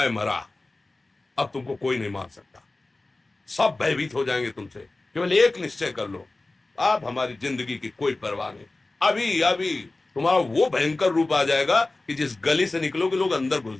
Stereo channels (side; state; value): right; quieter; 3.1 dB